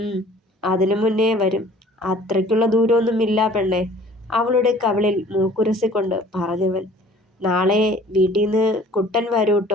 അതിനു മുന്നേ വരും. അത്രയ്ക്കുള്ള ദൂരമൊന്നുമില്ല പെണ്ണെ, അവളുടെ കവിളിൽ മൂക്കുരസിക്കൊണ്ട് പറഞ്ഞവൻ. നാളെ വീട്ടിൽ നിന്ന് കുട്ടൻ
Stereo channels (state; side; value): normal; both; correlation 0.51